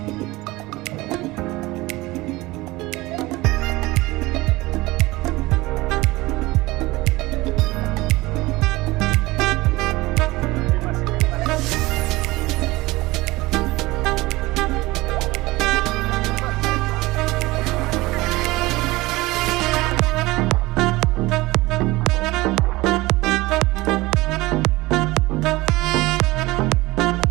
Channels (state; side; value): quieter; left; 20.4 dB